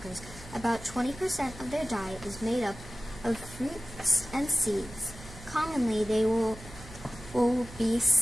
About 20% of their diet is made up of fruits and seeds. Commonly, they will be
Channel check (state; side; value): normal; both; correlation 0.96